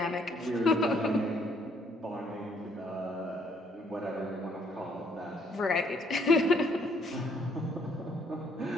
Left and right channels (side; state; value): both; normal; correlation 0.67